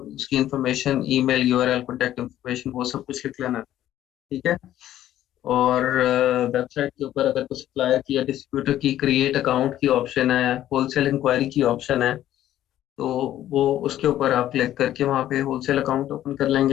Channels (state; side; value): quieter; right; 12.6 dB